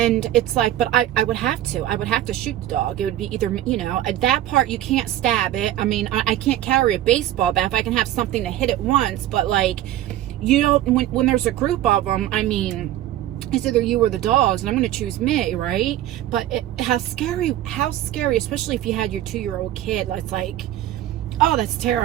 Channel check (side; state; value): left; quieter; 13.2 dB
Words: it's like, but I would have to shoot the dog. It would be either, you know, at that part you can't stab it. I mean, I can't carry a baseball bat if I can have something to hit it once, but like, you don't, when there's a group of them, I mean, it's either you or the dogs, and I'm going to choose me, right? But how scary, especially if you had your 2-year-old kid. It's like, oh, that's